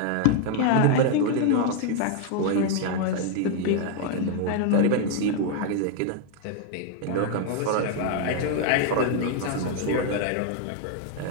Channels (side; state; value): both; different; correlation 0.00